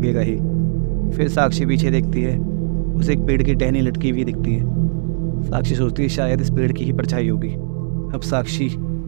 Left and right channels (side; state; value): left; silent; digital silence